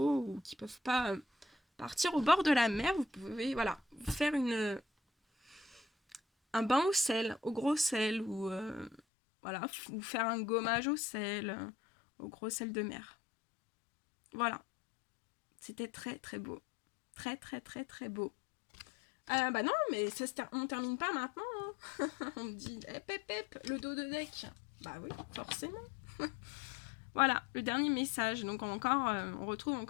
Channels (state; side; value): drops out; right; at 9.0 s